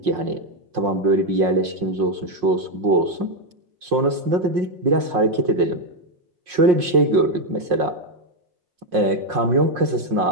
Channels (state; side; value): late; left; 5.6 ms